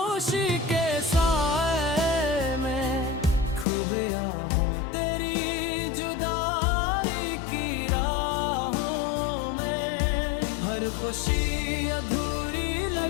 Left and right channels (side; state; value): right; drops out; at 3.7 s